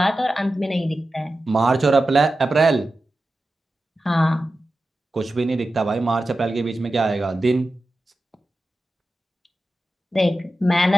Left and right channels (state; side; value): normal; both; correlation 0.93